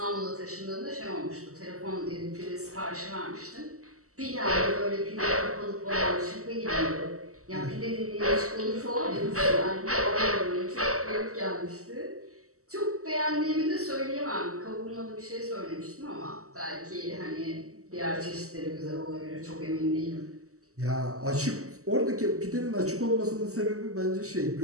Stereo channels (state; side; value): late; left; 0.65 ms